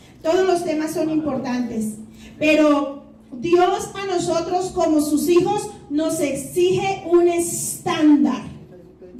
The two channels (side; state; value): both; identical; correlation 1.00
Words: Todos los temas son importantes, pero Dios a nosotros como sus hijos nos exige un estándar.